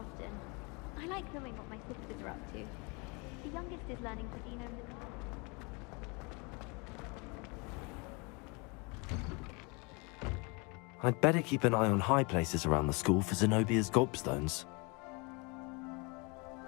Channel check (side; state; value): right; quieter; 30.1 dB